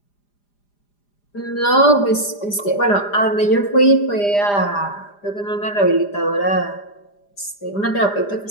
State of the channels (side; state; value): right; late; 4.9 ms